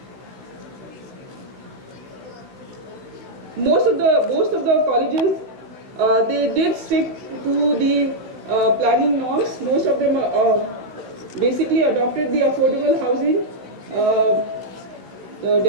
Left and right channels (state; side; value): late; left; 16 ms